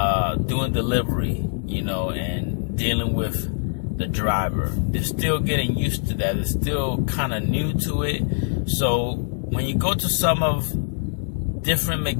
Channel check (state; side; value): silent; right; digital silence